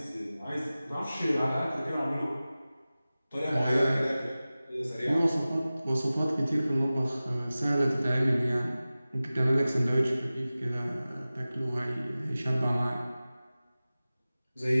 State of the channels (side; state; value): both; inverted; correlation -0.97